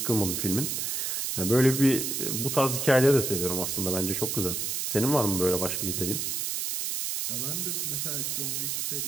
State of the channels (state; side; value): noise; right; hiss, 1 dB below the sound